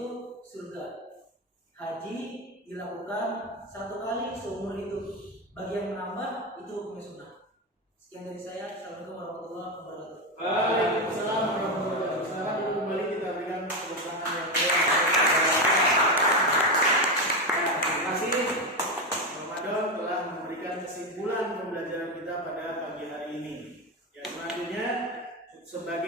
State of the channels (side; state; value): both; normal; correlation 0.13